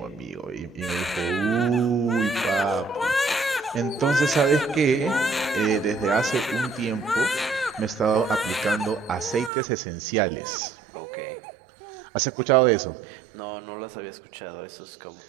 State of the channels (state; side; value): drops out; left; at 9.5 s